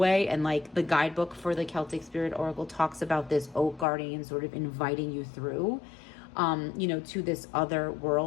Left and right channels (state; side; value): drops out; right; at 3.9 s